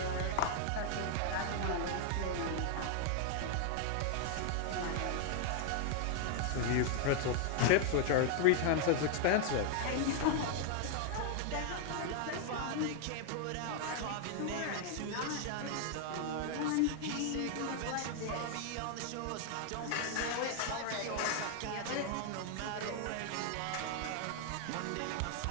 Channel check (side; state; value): both; different; correlation 0.00